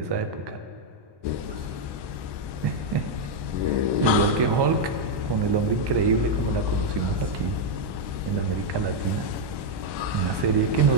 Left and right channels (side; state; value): left; late; 1.1 ms